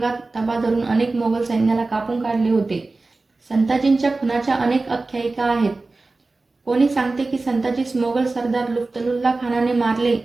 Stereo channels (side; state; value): left; quieter; 3.4 dB